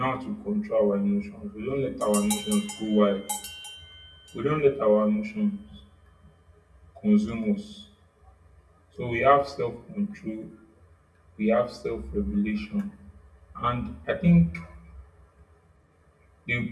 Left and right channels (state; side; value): identical; both; correlation 1.00